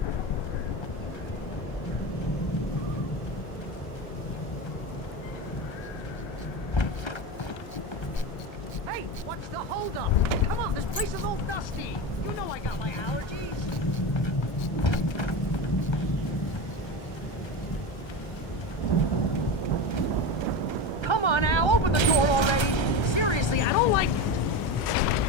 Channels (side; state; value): right; late; 1.3 ms